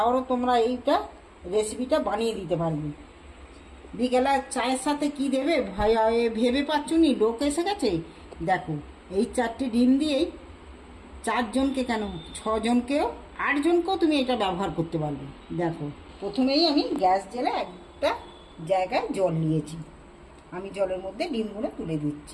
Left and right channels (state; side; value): identical; both; correlation 1.00